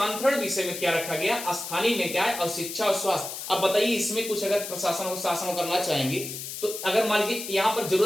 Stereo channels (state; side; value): noise; left; hiss, 8 dB below the sound